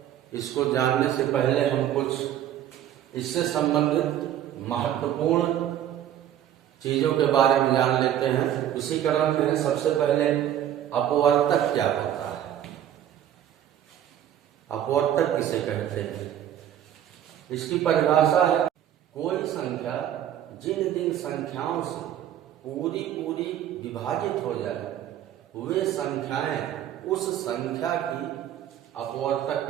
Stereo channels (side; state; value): left; quieter; 11.1 dB